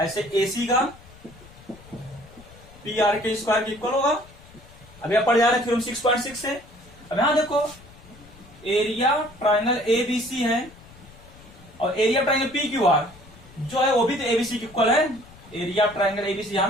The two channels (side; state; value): left; noise; rumble, 22 dB below the sound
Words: ए सी का पी आर के स्क्वायर के इक्वल होगा। अभी आप पढ़ जा रहे हैं थ्योरम 6.6 से। अब यहां देखो area triangle A B C है और area triangle P Q R जो है वो भी तो एबीसी के इक्वल है। एरिया ट्राइंगल एबीसी यहां